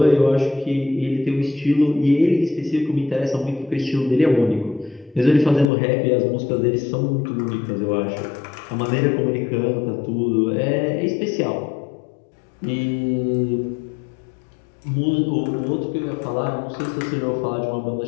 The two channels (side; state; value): right; drops out; at 5.7 s